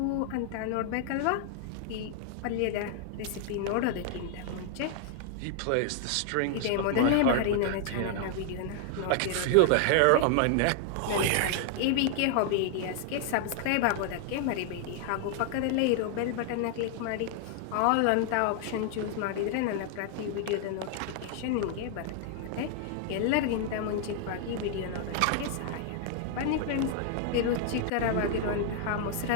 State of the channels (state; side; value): different; both; correlation 0.00